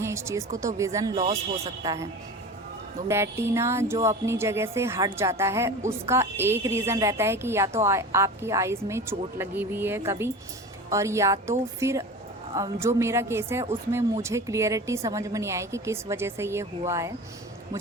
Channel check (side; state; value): both; normal; correlation 0.33